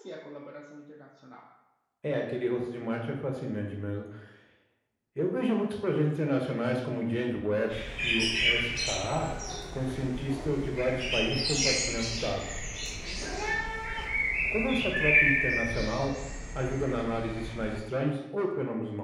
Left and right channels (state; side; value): identical; both; correlation 1.00